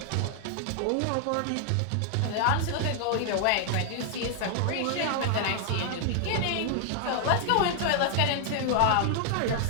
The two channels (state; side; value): different; both; correlation 0.00